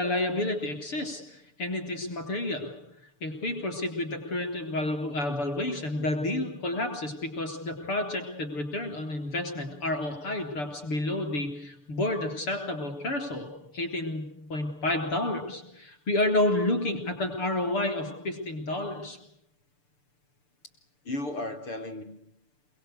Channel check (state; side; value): late; right; 6.8 ms